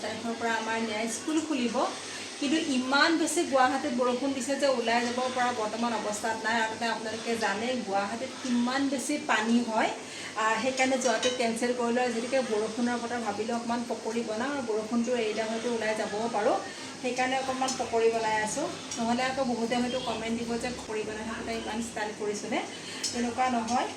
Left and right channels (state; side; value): identical; both; correlation 1.00